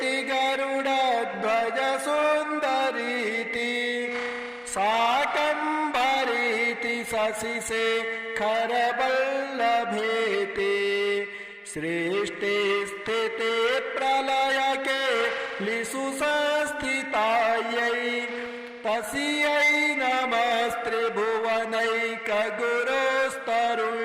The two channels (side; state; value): both; identical; correlation 1.00